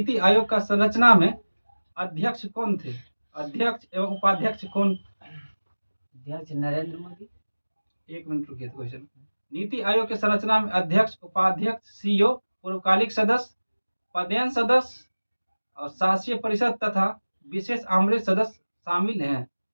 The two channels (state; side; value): inverted; both; correlation -1.00